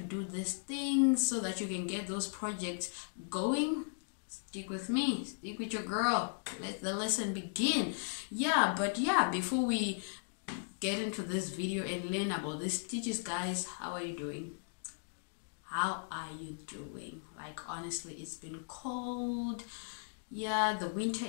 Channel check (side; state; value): right; silent; digital silence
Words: these things so that you can get those projects going, stick with me, stick with your girl. Let the lesson begin. But before we get into this video and learn about these stitches, guys, how are you doing? How are you doing? Like, honestly, it's been cold. Yeah, the winter